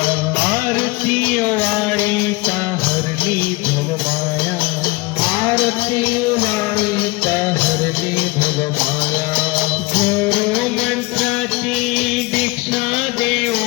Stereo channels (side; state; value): right; quieter; 23.6 dB